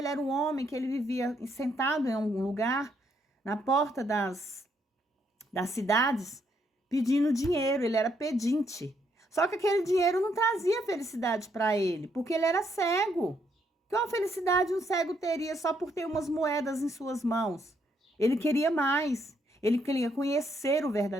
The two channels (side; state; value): both; normal; correlation 0.73